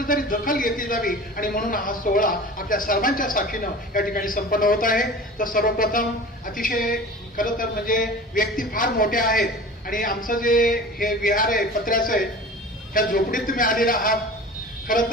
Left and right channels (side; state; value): both; normal; correlation 0.38